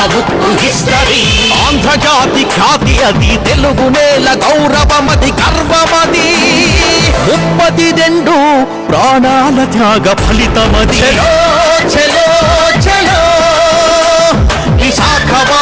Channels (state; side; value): identical; both; correlation 1.00